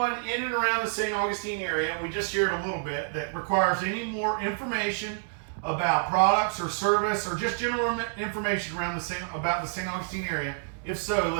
in and around the St. Augustine area, we just shared a little bit, that requires any more information about products or service or just general information around about the St. Augustine area? If so,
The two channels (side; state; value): left; silent; 59 dB below the other